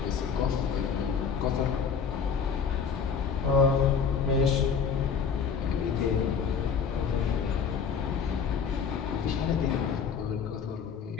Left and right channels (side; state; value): right; quieter; 6.3 dB